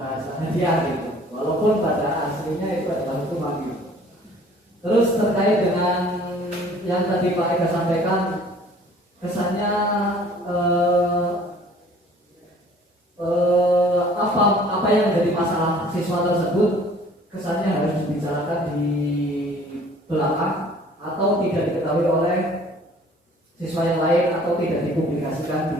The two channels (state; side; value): normal; both; correlation 0.52